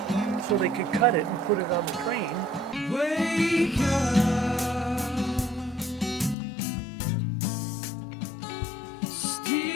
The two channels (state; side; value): drops out; right; at 6.4 s